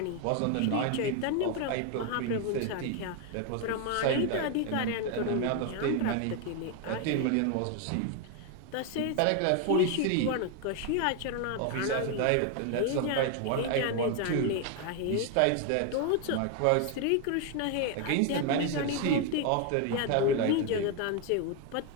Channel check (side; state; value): both; different; correlation 0.01